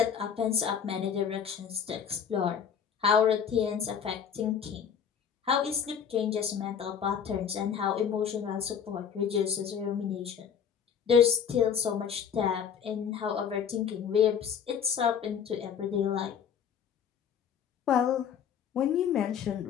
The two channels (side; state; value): right; quieter; 7.7 dB